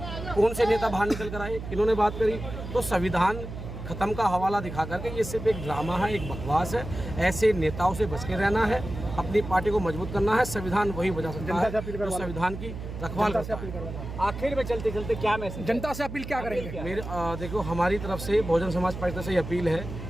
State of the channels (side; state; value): right; noise; hum, 9 dB below the sound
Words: कौन से नेता बाहर निकल कर आए, इन्होंने बात करी, तो संविधान खत्म का हवाला दिखा करके ये सिर्फ एक ड्रामा है, एक बकवास है। ऐसे नेताओं से बच के रहना है, अपनी पार्टी को मजबूत करना है। संविधान वही बचा सकता है जो संविधान की रखवाल करता है। आखिर में चलते चलते क्या मैसेज जनता से अपील क्या करेंगे? मेरे देखो, हमारी तरफ से बहुजन समाज पार्टी से ये अपील है